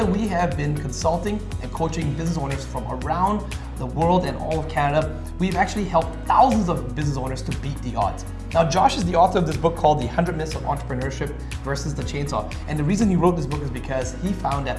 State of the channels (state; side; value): identical; both; correlation 1.00